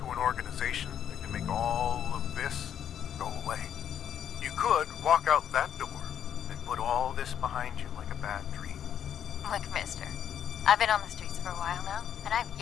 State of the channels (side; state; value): right; quieter; 9.3 dB